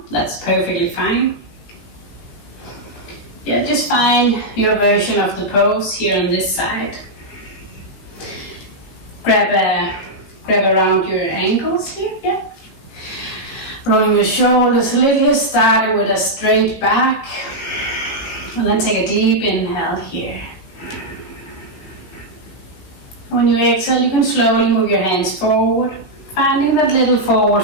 That's perfectly fine. Yeah, just find your version of the pose here on this side. Grab around your ankles here, yeah. Rolling your shoulders a little here, starting with a straight back. And then take a deep inhale here. When you exhale, you can slowly move your hands forward, finding that little forward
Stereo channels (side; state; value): right; late; 18 ms